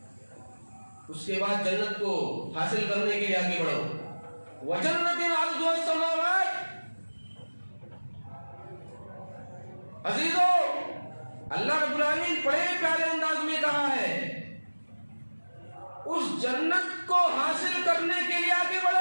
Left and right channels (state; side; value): inverted; both; correlation -1.00